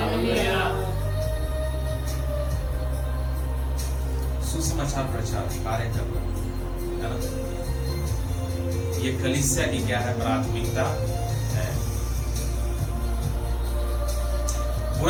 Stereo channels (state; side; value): identical; both; correlation 1.00